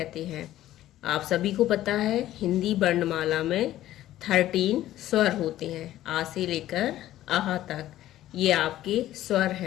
हैं। आप सभी को पता है हिंदी वर्णमाला में 13 स्वर होते हैं, आ से लेकर आहा तक। ये आपके स्वर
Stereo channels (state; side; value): quieter; right; 13.8 dB